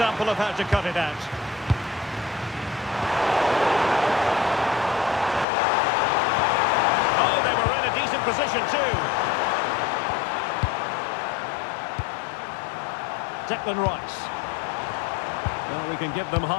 of how to cut it out. Oh, they were in a decent position too. Declan Rice. Well, we can give them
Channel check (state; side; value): drops out; right; at 5.5 s